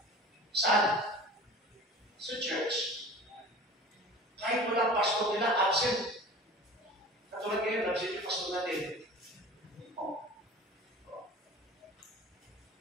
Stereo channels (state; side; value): normal; both; correlation 0.39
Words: Saan? Sa church. Kahit wala pastor nila, absent. Katulad ngayon, absent yung pastor natin.